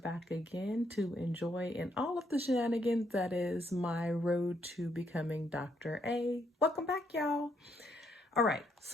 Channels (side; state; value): both; normal; correlation 0.74